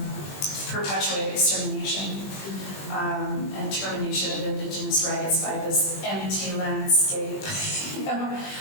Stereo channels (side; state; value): right; late; 20 ms